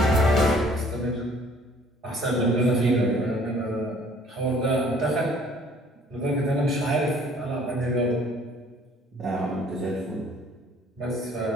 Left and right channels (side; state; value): both; normal; correlation 0.57